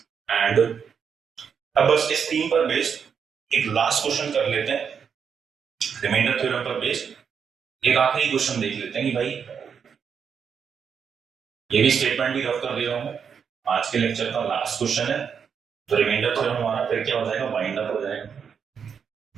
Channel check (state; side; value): quieter; left; 6.9 dB